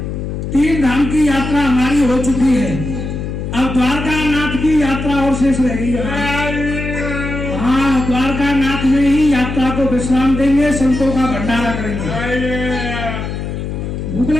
3 धाम की यात्रा हमारी हो चुकी है, अब द्वारका नाथ की यात्रा और शेष रह गई है। हाँ द्वारका नाथ में ही यात्रा को विश्राम देंगे, संतों का भंडारा करेंगे। भूख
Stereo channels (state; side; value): noise; left; hum, 5 dB below the sound